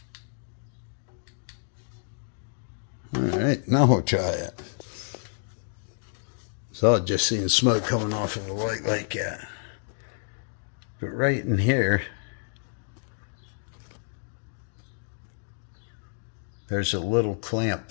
Alright, now we'll try it. So I've just seen smoke coming off of the light like that. But right in here, there's a little clamp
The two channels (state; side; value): silent; right; digital silence